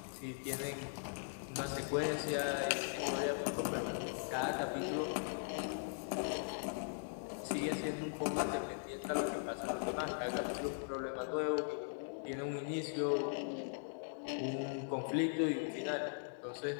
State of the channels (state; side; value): silent; right; digital silence